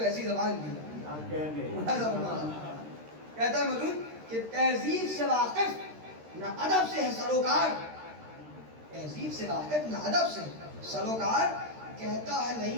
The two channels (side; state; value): left; late; 13 ms